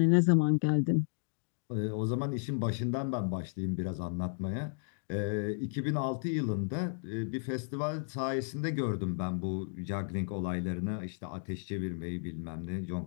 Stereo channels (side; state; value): right; silent; digital silence